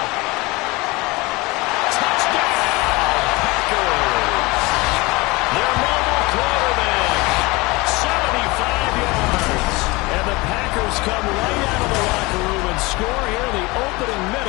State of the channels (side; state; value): right; quieter; 23.5 dB